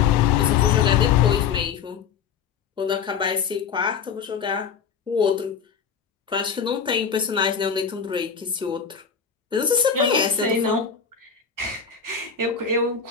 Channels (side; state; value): right; quieter; 6.8 dB